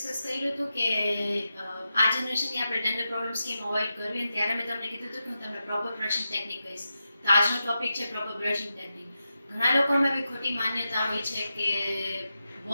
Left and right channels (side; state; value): both; inverted; correlation -0.89